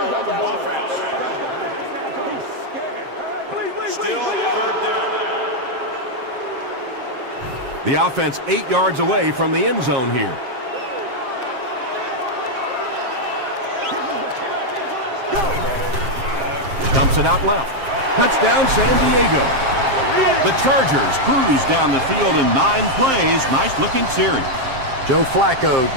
The offense 8 yards away from the end zone here. Dumps it out left. Touchdown, San Diego. The Chargers cruise down the field in 9 plays. Nice-looking series. Joe Flacco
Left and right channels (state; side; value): late; left; 7.6 ms